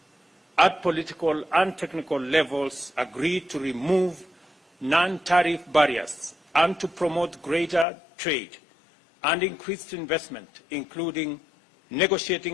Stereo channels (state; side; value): drops out; right; at 7.9 s